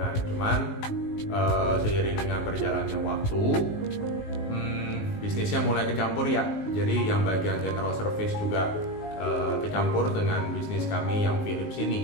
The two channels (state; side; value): late; right; 19 ms